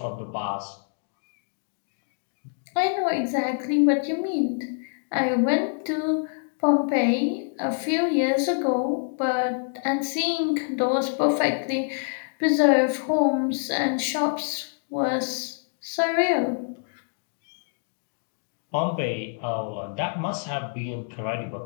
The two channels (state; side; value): silent; right; 59 dB below the other